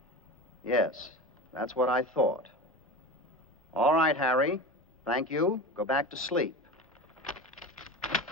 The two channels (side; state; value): both; normal; correlation 0.29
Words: Yes, that's what I thought. All right, Harry. Thank you. Go back to sleep.